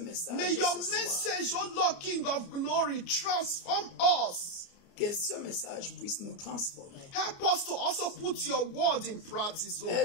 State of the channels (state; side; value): late; right; 29 ms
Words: May your message, oh Lord, King of glory, transform us. Que ce message puisse nous transformer. Help us to also put your word in practice, oh